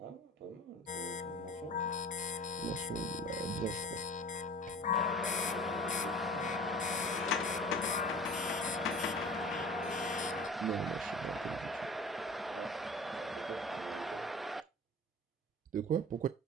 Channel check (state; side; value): normal; both; correlation 0.41